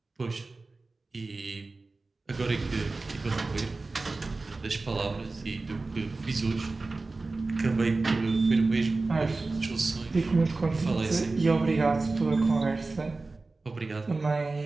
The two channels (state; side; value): quieter; left; 3.5 dB